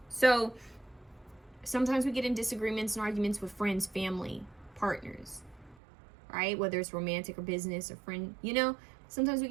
So sometimes we get in disagreements and arguments with friends, family, partners, right? Whether it's romantic or business or friend, you know, sometimes we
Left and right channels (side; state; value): left; drops out; at 5.8 s